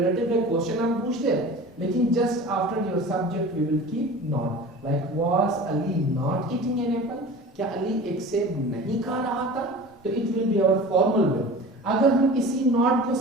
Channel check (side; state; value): both; normal; correlation 0.38